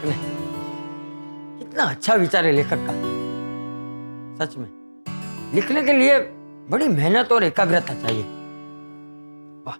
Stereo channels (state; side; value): inverted; both; correlation -1.00